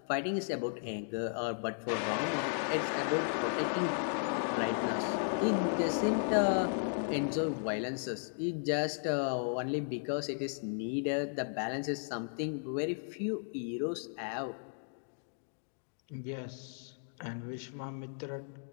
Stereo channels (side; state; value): right; silent; digital silence